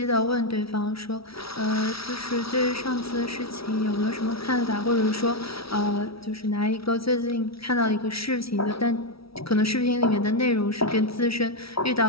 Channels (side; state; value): right; late; 0.76 ms